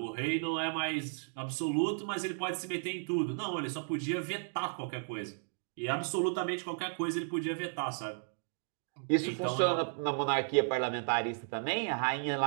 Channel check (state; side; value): silent; left; digital silence